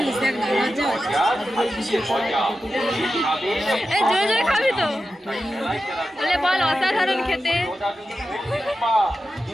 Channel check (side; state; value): both; normal; correlation 0.91